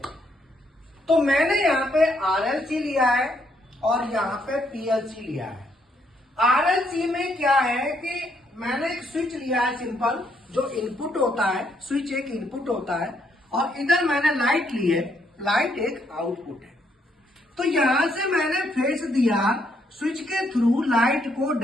तो मैंने यहाँ पे आरएलसी लिया है और यहाँ पे पीएलसी लिया है। आरएलसी में क्या है कि मैंने एक स्विच लिया है सिंपल, जो इनपुट होता है, स्विच एक इनपुट होता है और इधर मैंने लाइट ली है, लाइट एक आउटपुट है। तो यहां से मैंने फेस दिया, स्विच के थ्रू लाइट को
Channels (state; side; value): normal; both; correlation 0.73